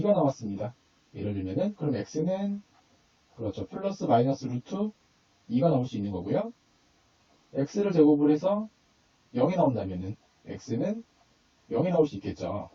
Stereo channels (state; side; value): identical; both; correlation 1.00